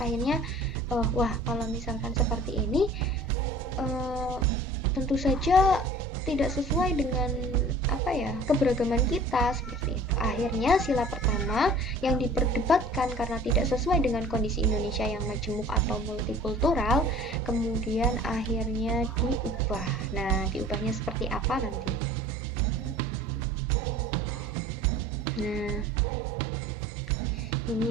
wah, kalau misalkan seperti ini tentu saja tidak sesuai dengan keberagaman kita seperti itu. Akhirnya sila pertama yang diperdebatkan karena tidak sesuai dengan kondisi Indonesia yang majemuk atau multikultural, kemudian akhirnya diubah. Nah, diubahnya seperti apa nanti? Nah,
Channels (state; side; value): normal; both; correlation 0.47